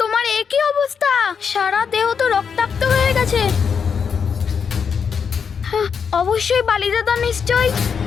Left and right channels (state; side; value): quieter; right; 6.5 dB